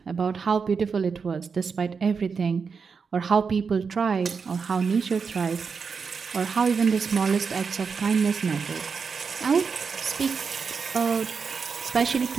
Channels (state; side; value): quieter; left; 5.5 dB